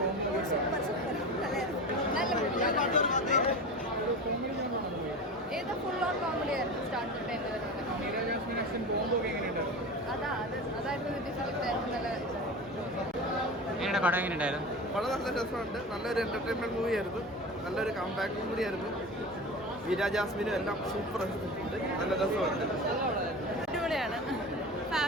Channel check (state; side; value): normal; both; correlation 0.30